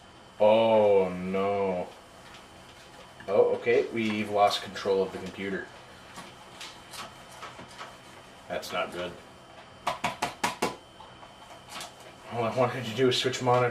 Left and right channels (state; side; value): identical; both; correlation 1.00